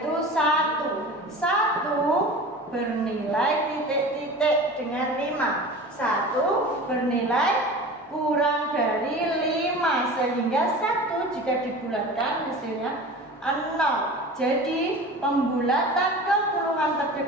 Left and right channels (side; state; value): both; normal; correlation 0.36